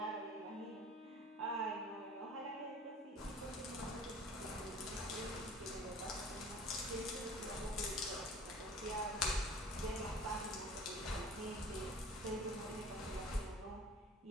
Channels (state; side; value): normal; both; correlation 0.46